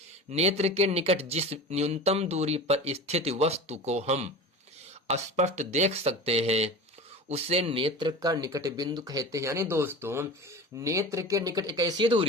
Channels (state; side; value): normal; both; correlation 0.32